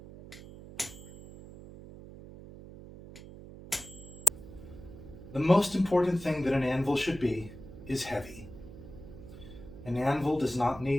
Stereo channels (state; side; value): noise; right; hum, 15 dB below the sound